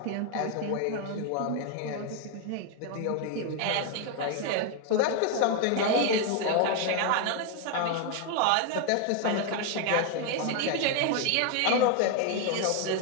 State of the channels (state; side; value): different; both; correlation 0.01